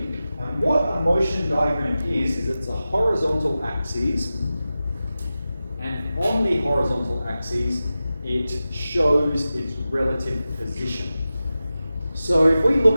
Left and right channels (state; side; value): inverted; both; correlation -0.94